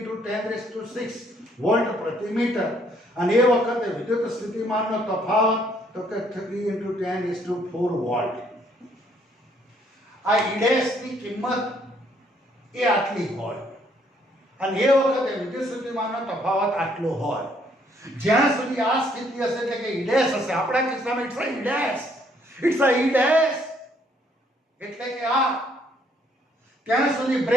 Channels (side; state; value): both; normal; correlation 0.67